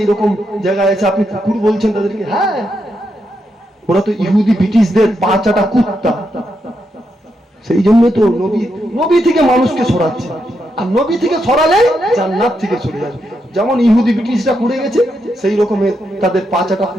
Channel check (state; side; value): normal; both; correlation 0.82